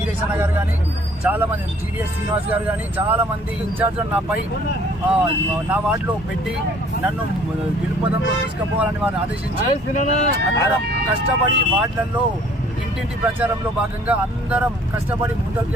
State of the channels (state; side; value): normal; both; correlation 0.57